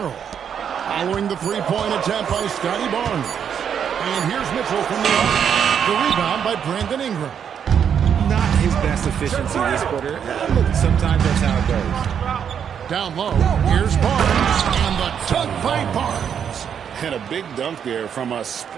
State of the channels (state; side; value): quieter; left; 8.0 dB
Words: Following the three-point attempt by Scotty Barnes. And here's Mitchell from the arc. The rebound by Brandon Ingram. Not his best efficiency this quarter. Look, sometimes that's how it goes. Down low, here's Barnes. And the dunk by Barnes. And a big dunk there from a